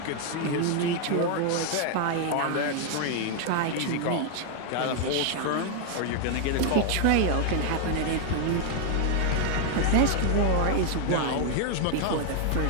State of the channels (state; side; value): different; both; correlation 0.00